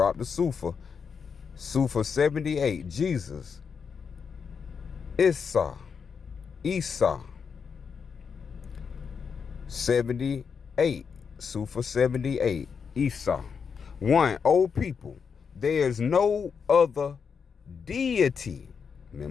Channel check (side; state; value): right; quieter; 6.2 dB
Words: the Sufa. Sufa 78, Jesus. Isa, 78, Sufa 78, Isa. 1, O people, there is no other deity.